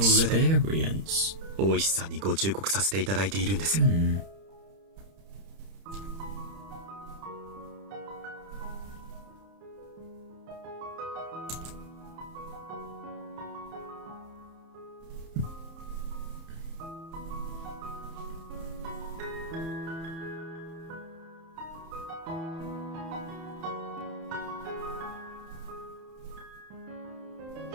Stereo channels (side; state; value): left; late; 31 ms